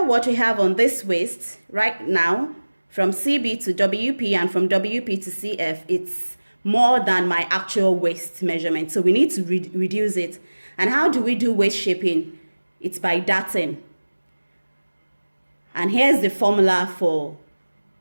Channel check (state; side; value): inverted; both; correlation -1.00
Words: what we have on this waist right now, from CB to WP and from WP to CF, it's more than my actual waist measurement. So we need to reduce it. And how do we do waist shaping? It's by darting. And here's the formula for